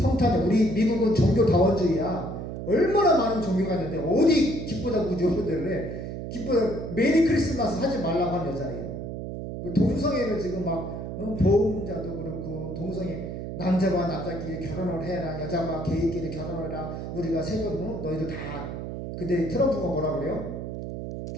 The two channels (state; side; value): noise; right; hum, 7 dB below the sound